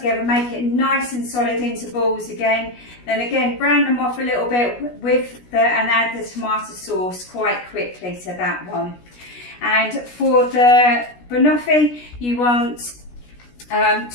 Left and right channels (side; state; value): right; late; 17 ms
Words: Make it nice and solid into balls again. Then again, brown them off a little bit and add the tomato sauce quite quickly to that one. And for the banoffee, you want